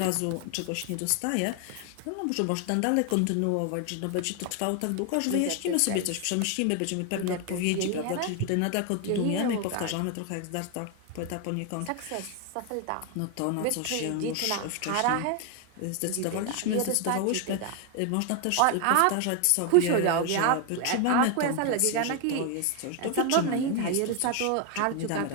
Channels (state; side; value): different; both; correlation 0.01